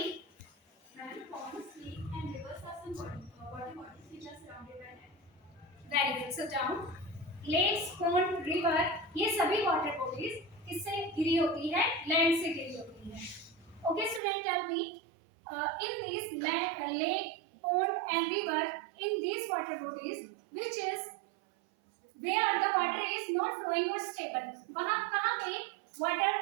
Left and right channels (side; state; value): left; drops out; at 14.2 s